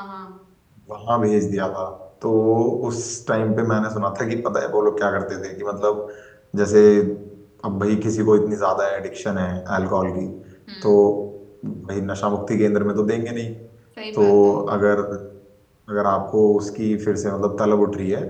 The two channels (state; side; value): identical; both; correlation 1.00